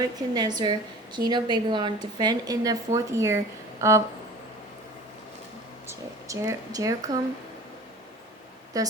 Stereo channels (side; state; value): both; normal; correlation 0.42